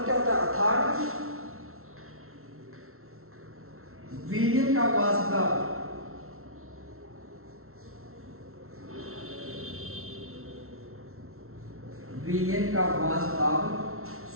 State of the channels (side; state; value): left; late; 0.62 ms